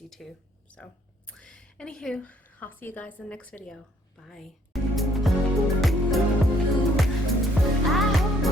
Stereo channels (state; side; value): normal; both; correlation 0.66